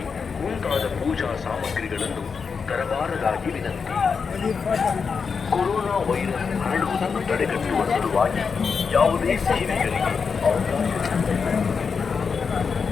ಮುಂತಾದ ಪೂಜಾ ಸಾಮಗ್ರಿಗಳನ್ನು ತರಬಾರದಾಗಿ ವಿನಂತಿ. ಕೊರೋನಾ ವೈರಸ್ ಹರಡುವುದನ್ನು ತಡೆಗಟ್ಟುವ ಸಲುವಾಗಿ ಯಾವುದೇ ಸೇವೆಗಳಿಗೆ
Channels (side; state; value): right; quieter; 5.6 dB